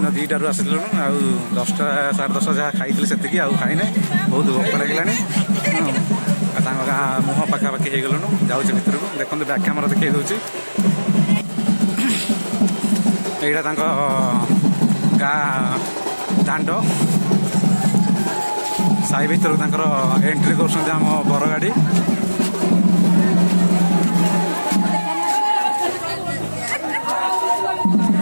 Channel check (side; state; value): both; inverted; correlation -1.00